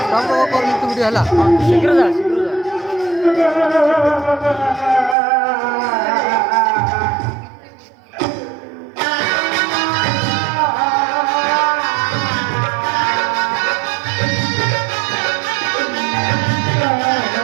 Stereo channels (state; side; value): drops out; left; at 5.2 s